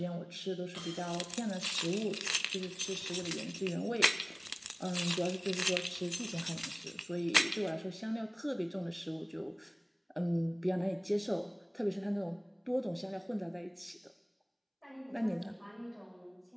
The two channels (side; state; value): both; identical; correlation 1.00